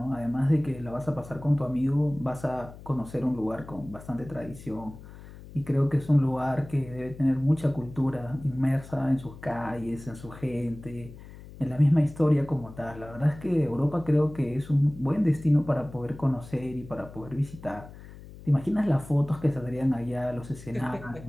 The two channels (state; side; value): noise; left; hum, 17 dB below the sound